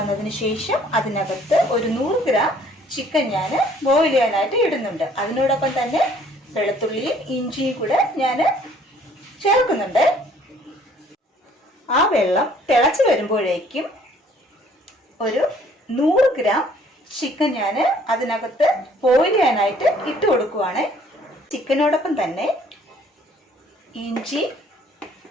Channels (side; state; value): both; normal; correlation 0.59